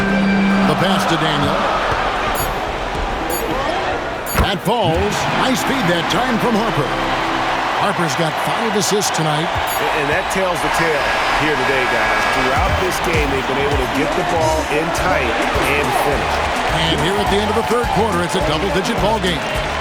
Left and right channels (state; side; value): identical; both; correlation 1.00